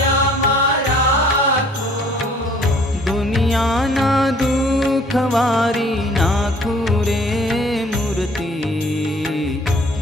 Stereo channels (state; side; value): normal; both; correlation 0.56